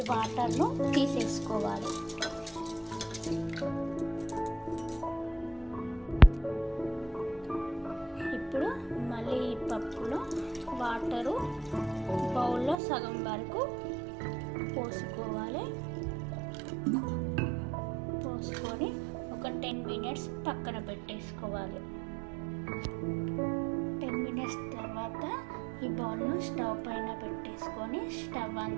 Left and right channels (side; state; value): left; drops out; at 12.8 s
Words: వాటర్ను తీసేసుకోవాలి. ఇప్పుడు మళ్ళీ ఈ పప్పులో వాటరు బౌల్లో సగం వరకు పోసుకోవాలి. పోసుకొని ఒక 10 మినిట్స్ పక్కన పెట్టేసుకోవాలి. 10 మినిట్స్ తర్వాత ఈ బౌల్ను స్టవ్ పైన పెట్టేసుకొని స్టవ్ ఆన్